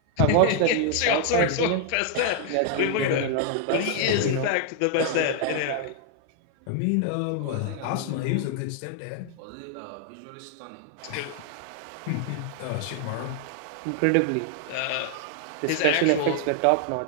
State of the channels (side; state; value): both; different; correlation 0.00